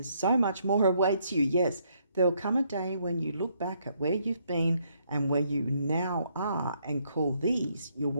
so much more awaits you. Yes, there'll come a day when you look back at where you've been and where you now are and call these your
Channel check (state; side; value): inverted; both; correlation -0.72